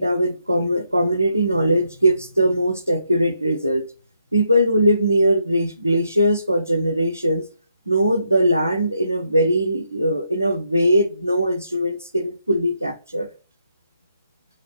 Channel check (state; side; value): inverted; both; correlation -0.78